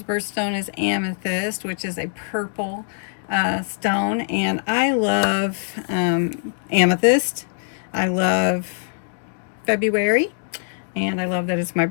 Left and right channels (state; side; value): silent; right; digital silence